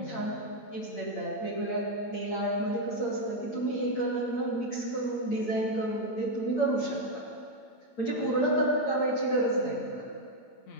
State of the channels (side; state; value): right; late; 8.7 ms